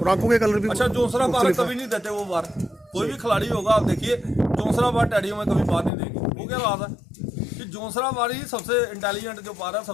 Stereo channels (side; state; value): right; drops out; at 5.9 s